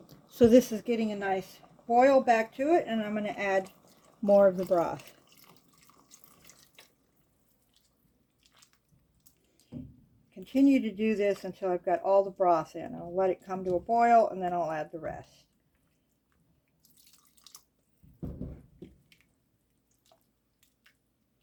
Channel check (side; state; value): both; identical; correlation 1.00